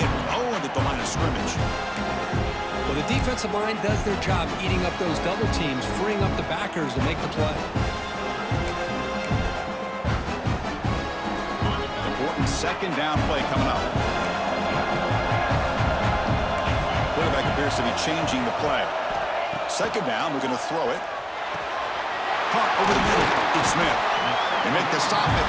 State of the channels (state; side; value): identical; both; correlation 1.00